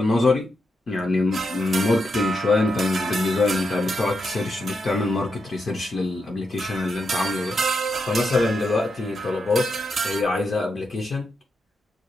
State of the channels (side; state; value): both; normal; correlation 0.84